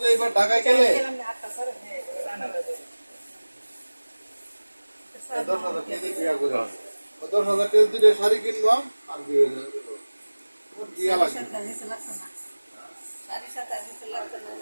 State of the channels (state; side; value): inverted; both; correlation -1.00